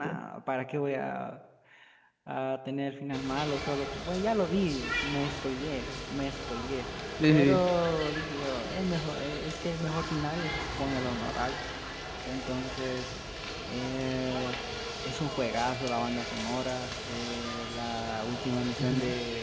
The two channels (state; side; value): identical; both; correlation 1.00